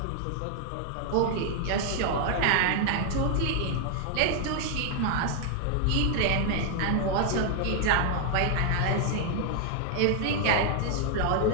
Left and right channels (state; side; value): different; both; correlation 0.00